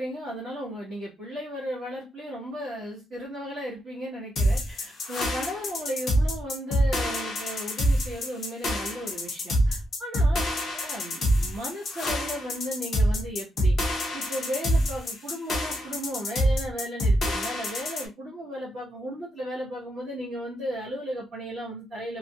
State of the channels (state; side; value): normal; both; correlation 0.82